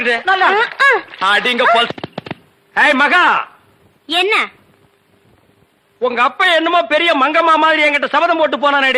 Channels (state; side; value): identical; both; correlation 1.00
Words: அடிங்க பல்ஸ். ஏய் மகா, என்ன? உங்க அப்பா என்னமோ பெரிய மங்கம்மா மாதிரி என்கிட்ட சபதம் போட்டு